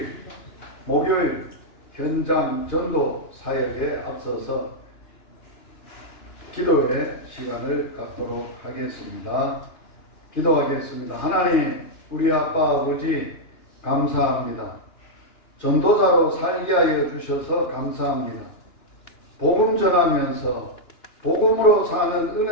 목요일 현장 전도 사역에 앞서서 기도의 시간을 갖도록 하겠습니다. 기도하겠습니다. 하나님, 우리 아빠 아버지 감사합니다. 전도자로 살게 하여 주셔서 감사합니다. 복음 전하면서 복음으로 사는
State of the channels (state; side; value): late; right; 2.9 ms